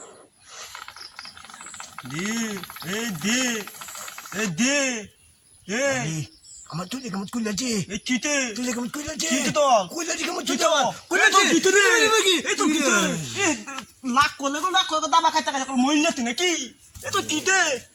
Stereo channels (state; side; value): identical; both; correlation 1.00